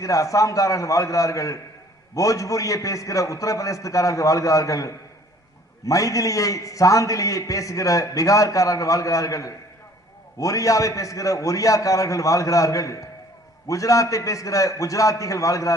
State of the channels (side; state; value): both; normal; correlation 0.54